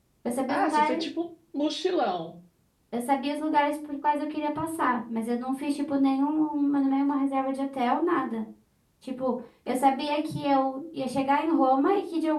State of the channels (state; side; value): identical; both; correlation 1.00